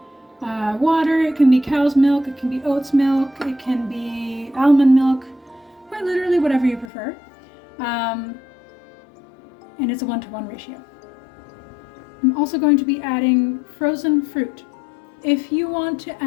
water, it can be cow's milk, it can be oat's milk, it can be almond milk, quite literally whatever you prefer. And it's a 1-to-1 ratio. I'm also going to be adding frozen fruit. If you want to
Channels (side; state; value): right; drops out; at 6.9 s